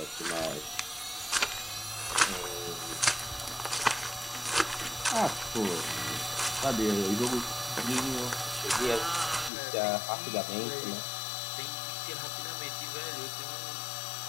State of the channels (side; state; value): right; drops out; at 9.5 s